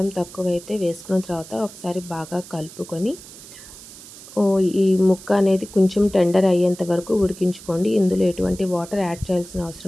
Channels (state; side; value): noise; right; hiss, 17 dB below the sound